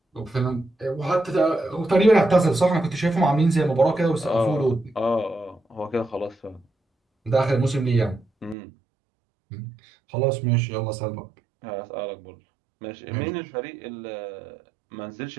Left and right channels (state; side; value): drops out; left; at 8.6 s